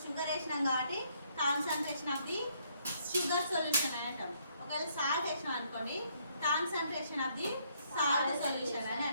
షుగర్ వేసినాం కాబట్టి concentration of the sugar solution అని అంటాం. ఒకవేళ సాల్ట్ వేసినాం అనుకోండి concentration of the salt solution అని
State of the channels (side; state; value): both; inverted; correlation -0.69